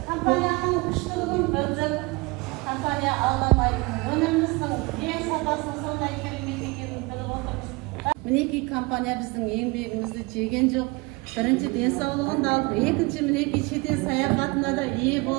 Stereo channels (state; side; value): quieter; left; 25.2 dB